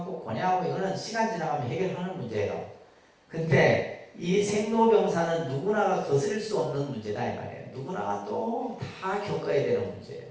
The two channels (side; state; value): both; identical; correlation 1.00